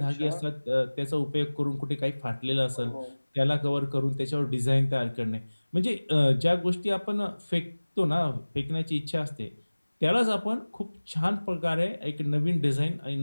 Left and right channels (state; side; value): inverted; both; correlation -1.00